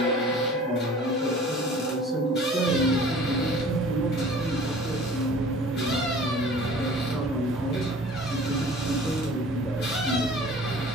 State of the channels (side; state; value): both; normal; correlation 0.47